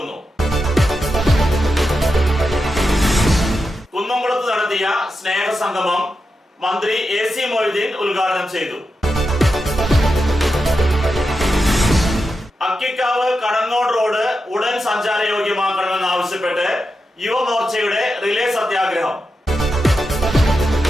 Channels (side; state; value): both; normal; correlation 0.88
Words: കുന്നംകുളത്ത് നടത്തിയ സ്നേഹസംഗമം മന്ത്രി AC മൊയ്തീൻ ഉദ്ഘാടനം ചെയ്തു. അക്കിക്കാവ് കടങ്ങോട് റോഡ് ഉടൻ സഞ്ചാരയോഗ്യമാക്കണമെന്നാവശ്യപ്പെട്ട് യുവമോർച്ചയുടെ റിലേ സത്യാഗ്രഹം.